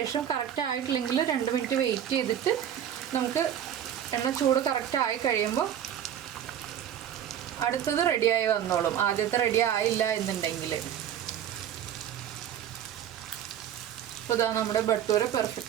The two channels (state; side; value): quieter; left; 10.1 dB